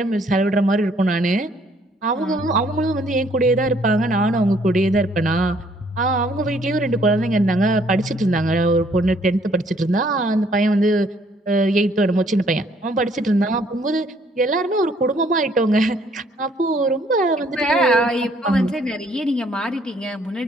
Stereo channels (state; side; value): normal; both; correlation 0.64